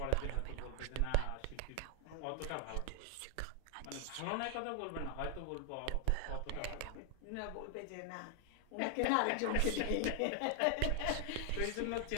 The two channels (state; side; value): different; both; correlation 0.00